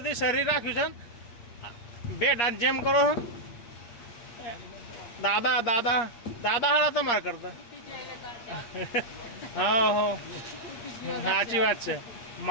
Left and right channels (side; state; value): right; late; 8.5 ms